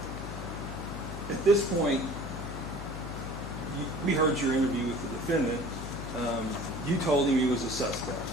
at this point, we heard your interview with the defendant. You told him he was a suspect,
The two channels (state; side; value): noise; left; hum, 8 dB below the sound